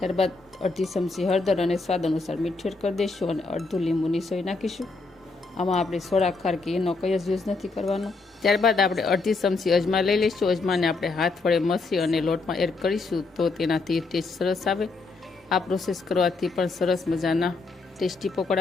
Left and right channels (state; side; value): quieter; right; 3.8 dB